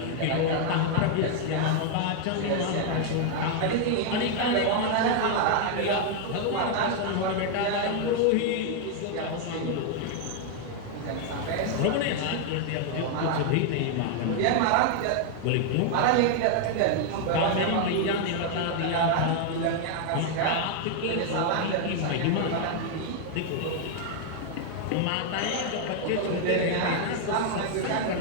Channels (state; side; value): different; both; correlation 0.00